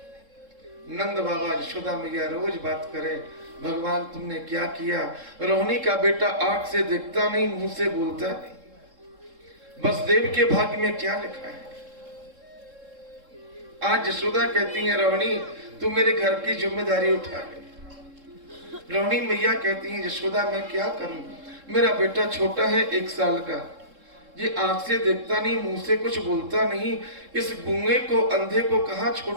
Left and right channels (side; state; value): left; late; 3.7 ms